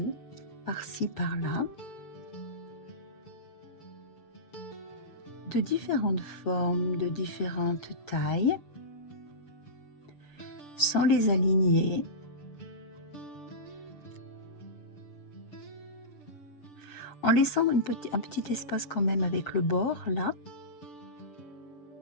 par-ci, par-là, de différentes formes, de différentes tailles, sans les aligner, en laissant un petit espace quand même avec le bord là.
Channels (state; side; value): late; right; 6.9 ms